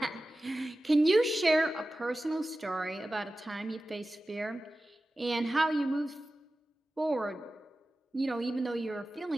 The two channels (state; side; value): normal; both; correlation 0.95